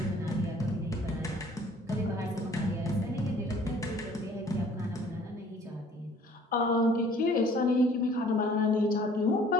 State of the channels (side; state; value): both; normal; correlation 0.55